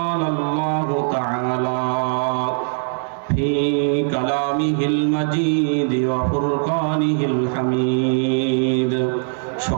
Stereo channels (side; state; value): left; silent; 65 dB below the other